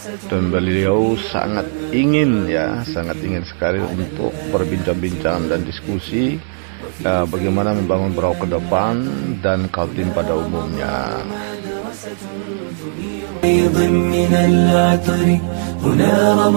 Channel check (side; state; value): left; silent; digital silence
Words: dan beliau sangat ingin sekali untuk berbincang-bincang dan diskusi bagaimana membangun Berau ke depan dan Kaltim pada umumnya. هنا